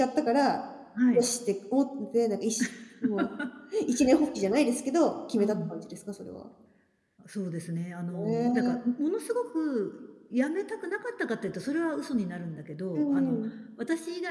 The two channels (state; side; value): identical; both; correlation 1.00